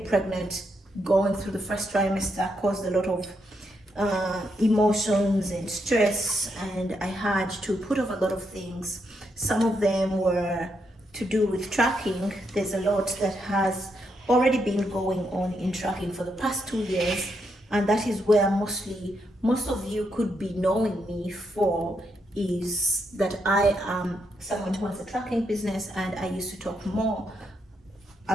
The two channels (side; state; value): both; normal; correlation 0.79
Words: pregnant, going through the first trimester caused a lot of emotions and stress, and I had to put off a lot of things. Some of them were to do with tracking. There's a lot that has already been going on in tracking for the past 2 years, and that is where most of you could be knowing me for, is that I am someone who has a tracking business, and I used to talk more